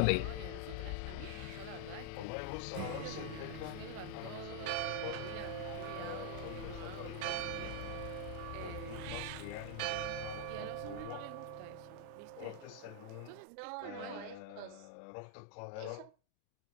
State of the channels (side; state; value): both; different; correlation 0.00